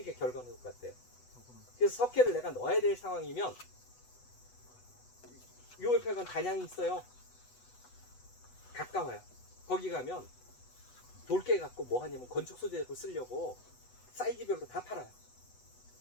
결과는 똑같아요. 그래서 석회를 내가 넣어야 될 상황이면 요 옆에 간 단양이 있어요. 가까워요. 거기 가면 돌깨 갖고 뭐 하냐면 건축 소재로 쓰려고 사이즈별로 다 팔아요.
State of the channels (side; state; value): right; late; 8.1 ms